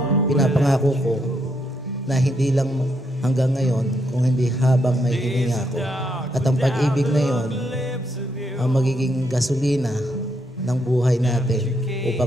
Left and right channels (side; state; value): both; normal; correlation 0.77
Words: Pinapangako ko na hindi lang hanggang ngayon, kung hindi habang may hininga ko. At ang pag-ibig na yon ang magiging gasolina ng buhay natin